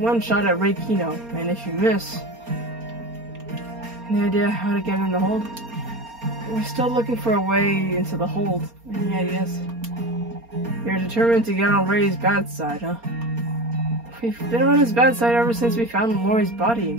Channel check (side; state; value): left; late; 4.3 ms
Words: one shot at Ray Kino, and if you miss... Any idea how to get in the hold? We're still looking for a way into the hold. Any ideas? You're determined to get on Ray's bad side, huh? We've been on his bad side ever since we found Lori's